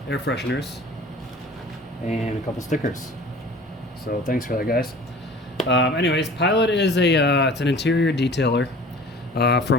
air fresheners, and a couple stickers. So thanks for that, guys. Anyways, Pilot is it's an interior detailer.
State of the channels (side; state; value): both; normal; correlation 0.45